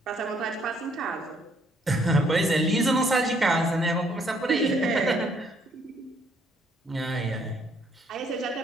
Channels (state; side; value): normal; both; correlation 0.67